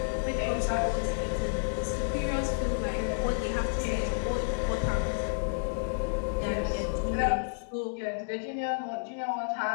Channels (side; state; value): right; silent; digital silence